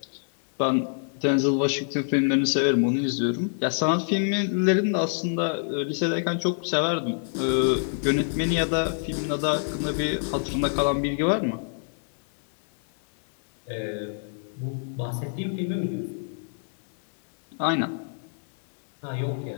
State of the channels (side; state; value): right; silent; 61 dB below the other